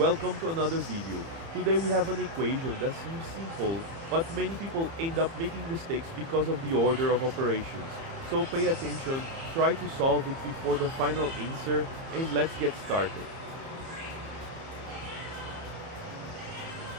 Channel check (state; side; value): late; left; 30 ms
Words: to another video. Today we have an equation that seems simple, but many people end up making mistakes because of the order of operations. So pay attention, try to solve it before the final answer, and let's get started.